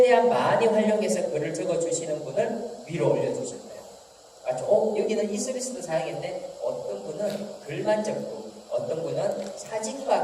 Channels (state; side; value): identical; both; correlation 1.00